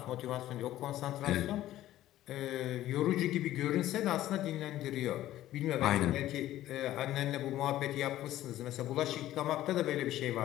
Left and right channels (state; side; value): quieter; right; 14.0 dB